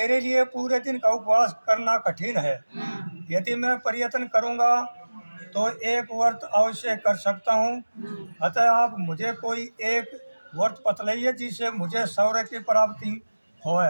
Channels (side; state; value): both; inverted; correlation -1.00